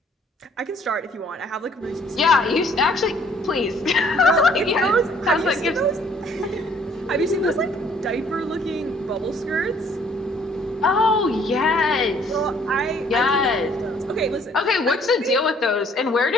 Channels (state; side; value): normal; both; correlation 0.60